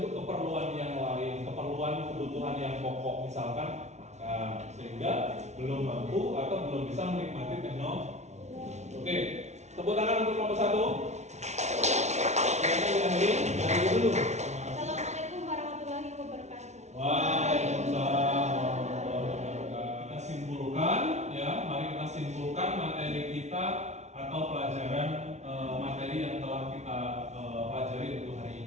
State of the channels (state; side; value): late; left; 0.32 ms